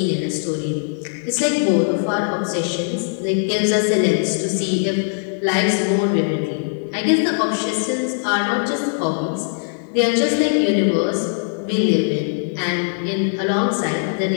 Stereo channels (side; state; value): right; silent; 64 dB below the other